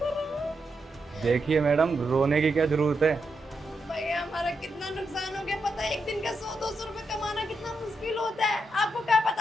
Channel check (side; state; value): both; normal; correlation 0.83